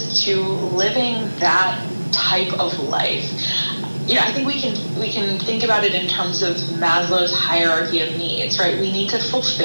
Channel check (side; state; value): both; inverted; correlation -1.00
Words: to living that type of life. You know, I think we can think about it in terms of Maslow's hierarchy of needs, right? We need to